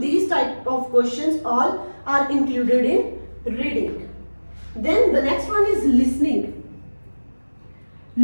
type of questions all are included in reading. Then the next one is listening.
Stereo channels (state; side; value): inverted; both; correlation -1.00